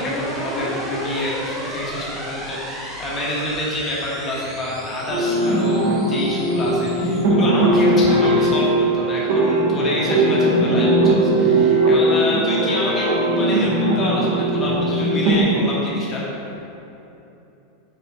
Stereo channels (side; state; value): both; normal; correlation 0.11